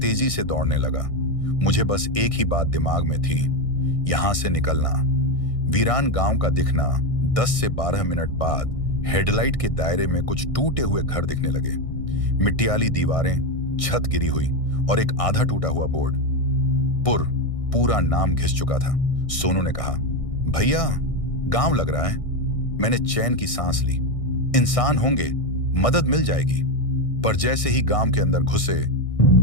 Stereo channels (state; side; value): late; right; 1.6 ms